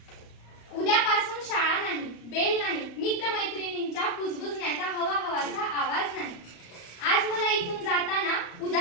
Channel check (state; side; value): late; right; 34 ms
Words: उद्यापासून शाळा नाही, बेल नाही, मित्रमैत्रिणींच्या कुजबुजण्याचा हवा-हवाचा आवाज नाही. आज मला इथून जाताना